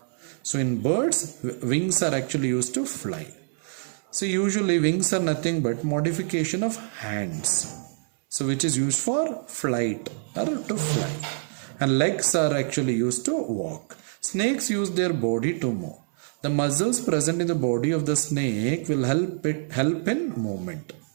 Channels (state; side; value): silent; left; 61 dB below the other